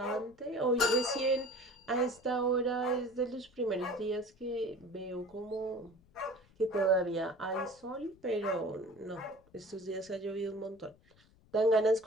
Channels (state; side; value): noise; left; rumble, 29 dB below the sound